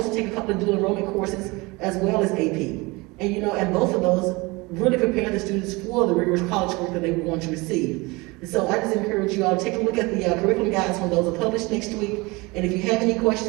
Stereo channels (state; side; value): quieter; left; 24.4 dB